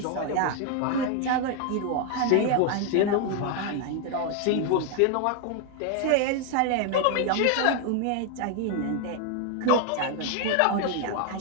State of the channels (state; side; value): different; both; correlation 0.00